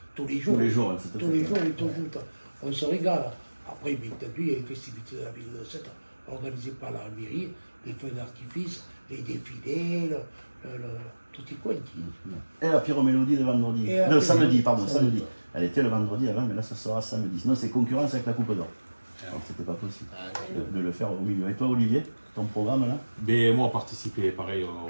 tous les jours. Tous les jours, hein, c'est tout à Tous les fait. jours, on est tous joute. On se régale. Après, bien entendu, il y a les festivités de la ville de Sète, organisées par la mairie, les feux d'artifice, les défilés, tout est quanti. Et la pyromélodie de vendredi. Et la Non, pyromélodie. samedi. Elle était le vendredi avant, mais là, ça sera samedi. Sinon, c'est concurrence avec la Coupe d'Or. Donc, c'était pas possible de le faire au milieu. Et toi, Olivier, ton programme là? Mais moi, participer pareil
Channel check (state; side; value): inverted; both; correlation -1.00